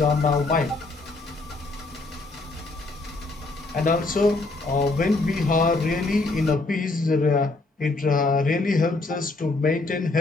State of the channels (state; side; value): quieter; right; 3.3 dB